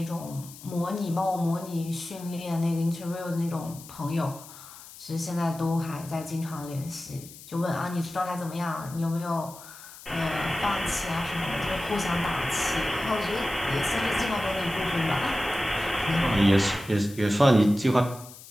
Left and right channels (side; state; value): left; noise; hiss, 17 dB below the sound